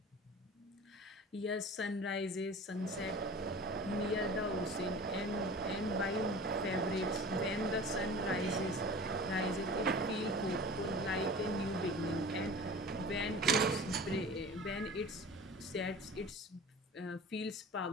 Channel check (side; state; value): both; normal; correlation 0.39